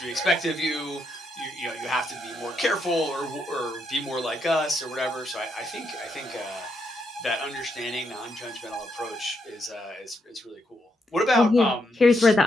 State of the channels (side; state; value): both; normal; correlation 0.79